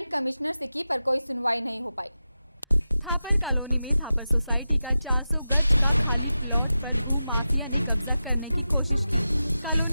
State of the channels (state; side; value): inverted; both; correlation -0.93